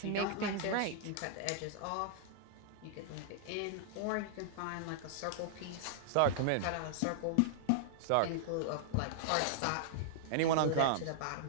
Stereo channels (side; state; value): both; different; correlation -0.01